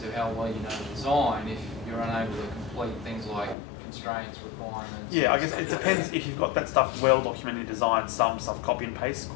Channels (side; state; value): right; drops out; at 3.6 s